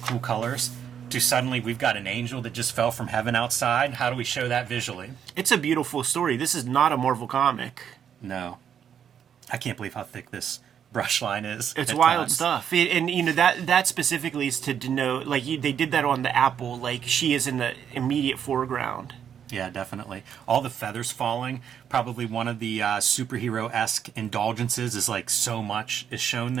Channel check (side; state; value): left; quieter; 8.5 dB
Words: cool colors to suddenly we've got an angel that just fell from heaven outside. How do we show that visually? It's a beautiful story. This is not a Marvel comic. No. I can't believe how thick this brush line is. It's at wild times. stuff. And you know, that specifically is to denote, like, they did that on the Apple, like, she is in the immediate foreground. Yeah, definitely. All the feathers falling. Probably one of the superhero-esque indulgences is like so much is shown